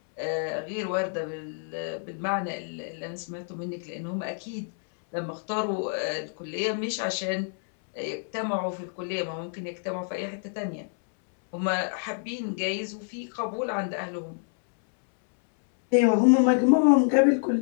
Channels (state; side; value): silent; right; 60 dB below the other